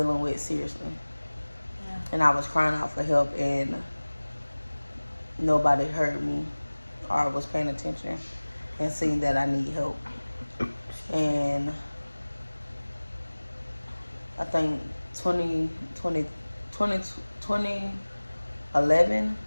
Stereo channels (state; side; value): inverted; both; correlation -1.00